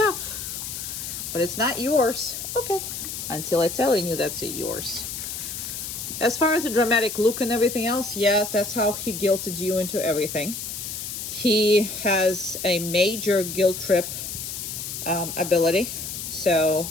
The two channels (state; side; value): noise; left; hiss, 6 dB below the sound